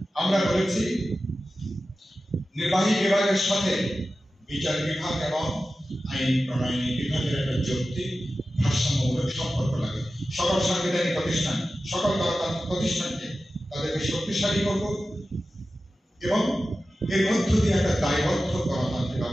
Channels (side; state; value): both; normal; correlation 0.94